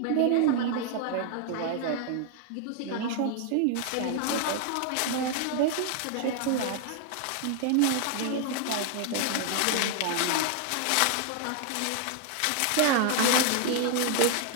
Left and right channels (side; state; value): both; different; correlation 0.00